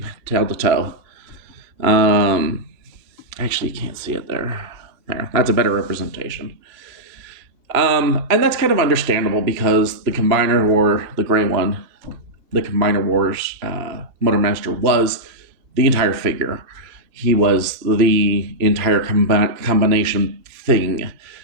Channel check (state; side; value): late; left; 2.9 ms